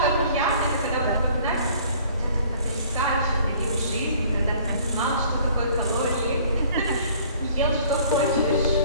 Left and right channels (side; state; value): both; inverted; correlation -0.54